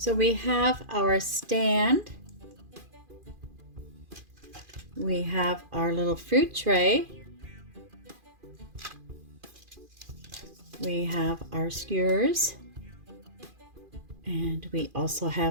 we have our stand. We have our little fruit tray. We have our skewers. And we also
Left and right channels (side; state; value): left; late; 2.4 ms